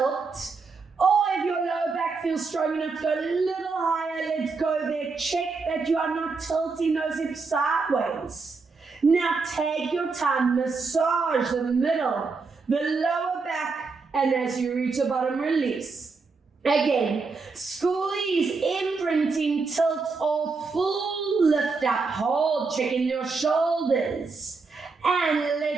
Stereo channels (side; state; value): left; quieter; 4.4 dB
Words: or if your lower back feels strong enough, go a little higher. Let's go there. Check that you are not tilting those hips sideways. Now take your time, massage the middle, the lower back, and as you reach the bottom, release. Again, squeeze, imprinting, tilt, or full lift up. Hold, checking your shoulders. And